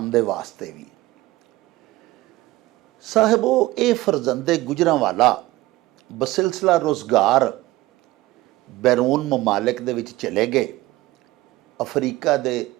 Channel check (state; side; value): quieter; left; 18.1 dB